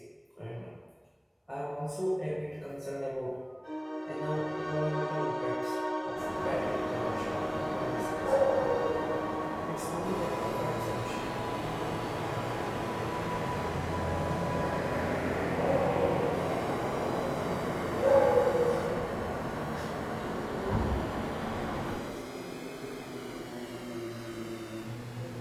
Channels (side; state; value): both; identical; correlation 1.00